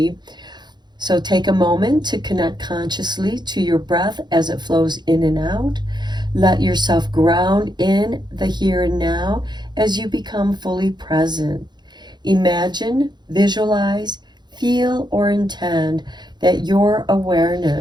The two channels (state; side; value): late; left; 0.21 ms